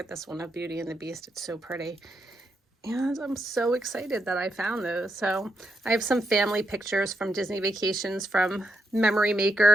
this one of Beauty and the Beast. It's so pretty. And I'm so excited that I found those. So I have some family pictures from Disney vacations from Memory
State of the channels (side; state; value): both; normal; correlation 0.82